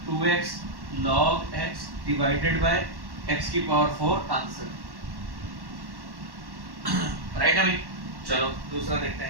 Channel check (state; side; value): late; left; 1.1 ms